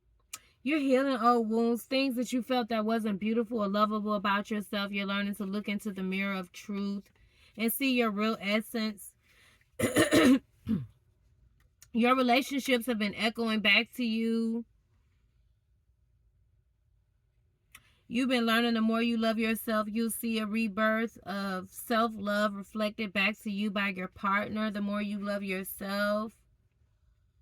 You're healing old wounds, things that you felt that wasn't beautiful or lovable about yourself. You're learning to look into the mirror of truth and see your real essence. Your relationships have been echoing back to you. You've been learning the more you love yourself, you'll see a rebirth of self-love reflected back to you by your partner. The more you love yourself,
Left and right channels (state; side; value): identical; both; correlation 1.00